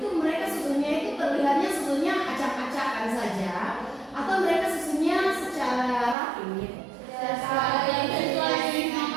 mereka susunnya itu terlihatnya susunnya acak-acakan saja atau mereka susunnya secara rapi gitu?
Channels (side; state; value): left; drops out; at 6.2 s